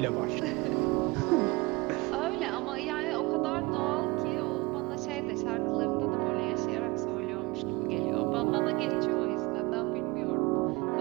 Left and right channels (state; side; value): quieter; left; 24.1 dB